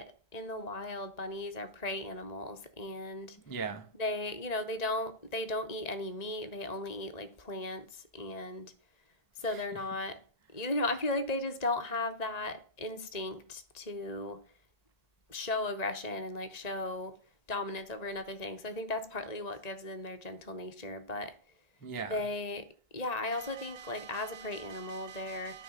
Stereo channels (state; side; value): late; right; 1.9 ms